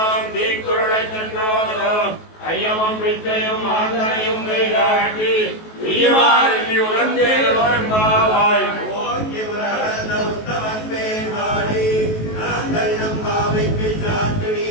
ஐயமும் பிச்சையும் ஆந்தனையும் கைகாட்டி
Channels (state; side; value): late; right; 19 ms